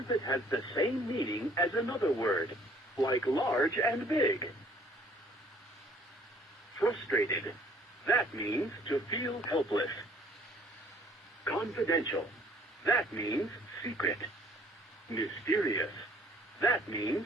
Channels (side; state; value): both; normal; correlation 0.58